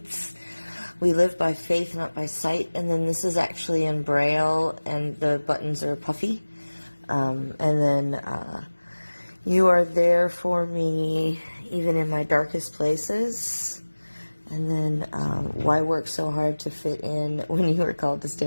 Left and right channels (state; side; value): inverted; both; correlation -1.00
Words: We live by faith, not by sight. And then this is actually in Braille and the buttons are puffy. And then you are there for me even in my darkest places. And then, why work so hard to fit in when you were called to